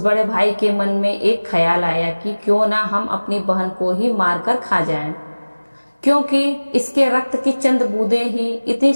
बड़े भाई के मन में एक ख्याल आया कि क्यों ना हम अपनी बहन को ही मारकर खा जाएं, क्योंकि इसके रक्त की चंद बूंदें ही इतनी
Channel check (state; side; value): inverted; both; correlation -1.00